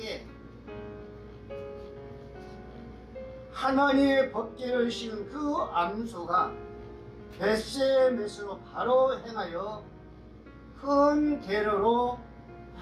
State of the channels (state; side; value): identical; both; correlation 1.00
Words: 하나님의 법궤를 씌운 그 암소가 벳세메스로 바로 행하여 큰 대로로